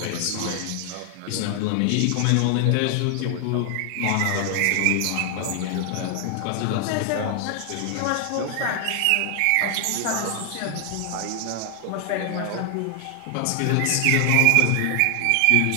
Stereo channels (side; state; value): both; different; correlation 0.00